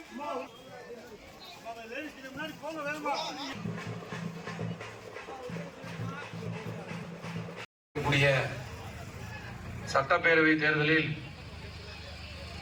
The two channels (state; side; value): identical; both; correlation 1.00